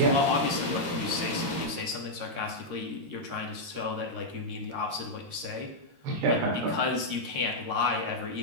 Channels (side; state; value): left; late; 13 ms